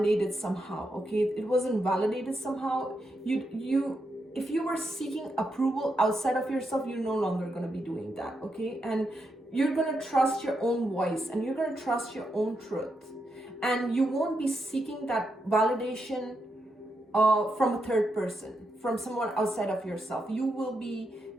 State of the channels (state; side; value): normal; both; correlation 0.83